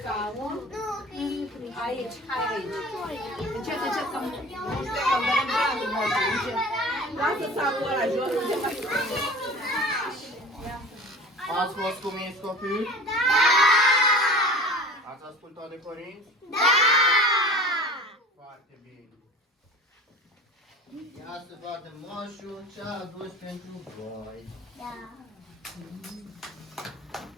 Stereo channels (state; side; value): normal; both; correlation 0.40